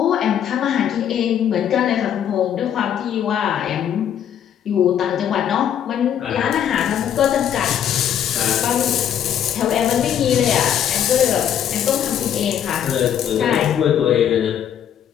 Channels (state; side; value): quieter; right; 9.5 dB